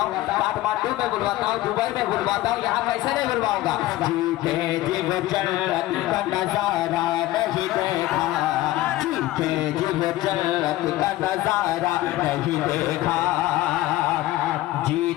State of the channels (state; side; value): quieter; right; 16.4 dB